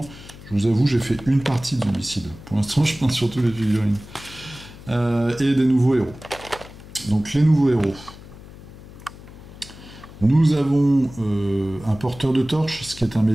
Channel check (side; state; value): left; noise; hum, 18 dB below the sound